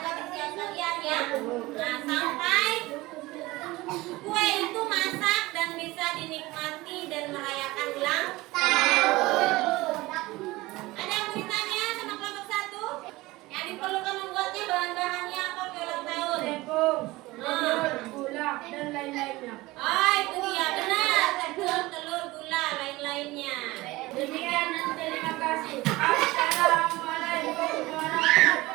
disiapkan ya. Nah, sampai kue itu masak dan bisa dinikmati dan merayakan ulang tahun. Ada yang mau ditanya sama kelompok 1? Yang diperlukan membuatnya bahan-bahannya apa kue ulang tahun? Tepung, telur, gula, dan lain-lainnya. Oh, itu dia benar. Tepung, telur, gula, lain-lainnya. Demikian dan terima kasih. Assalamualaikum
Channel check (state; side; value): quieter; left; 20.1 dB